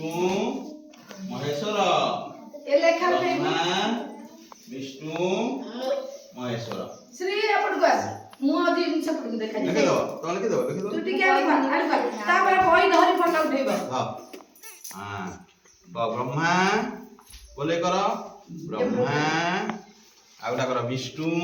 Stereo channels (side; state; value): both; identical; correlation 1.00